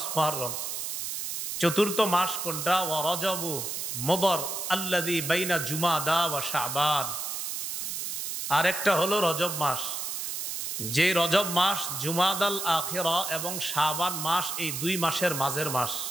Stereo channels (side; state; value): right; noise; hiss, 4 dB below the sound